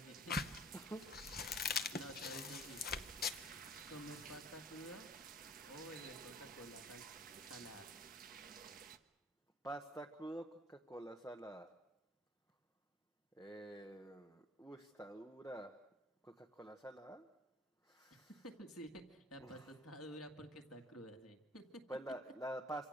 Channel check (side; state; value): both; normal; correlation 0.50